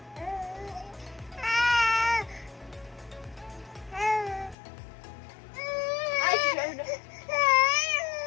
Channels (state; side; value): drops out; right; at 4.5 s